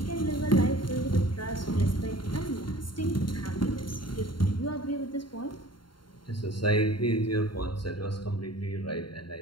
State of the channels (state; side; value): late; right; 0.72 ms